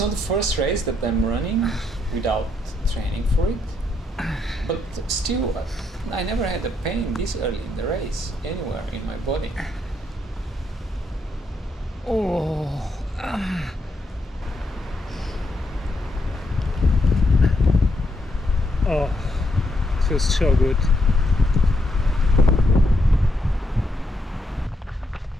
the first race that I'm running without training for it, but still I never had a pain this early in the race anywhere in my body. Oh, it feels so good.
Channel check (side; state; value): both; normal; correlation 0.78